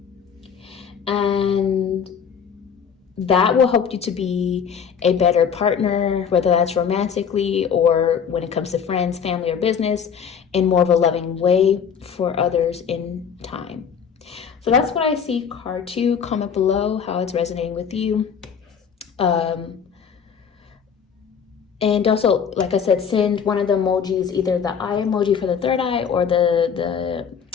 And that will help you to be a better partner, whether that's romantically or when it comes to friends, family, or business, in more of a loving way for others in time. So that's what I see. Card 2, comment below how it's resonating with you. And also, like I said, send one of the emojis, either the eye emoji for the third eye or the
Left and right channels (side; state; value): right; quieter; 7.1 dB